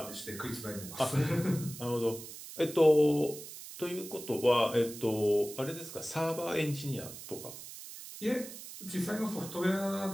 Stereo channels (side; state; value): right; noise; hiss, 13 dB below the sound